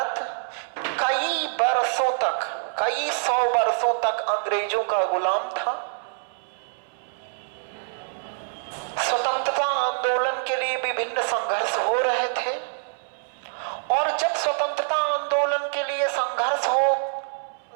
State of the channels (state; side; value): silent; left; 61 dB below the other